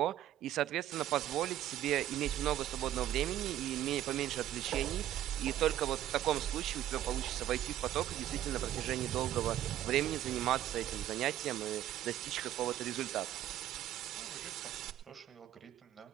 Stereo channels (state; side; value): quieter; left; 12.6 dB